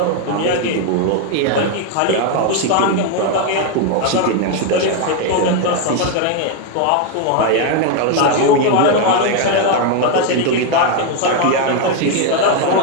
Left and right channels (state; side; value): different; both; correlation 0.01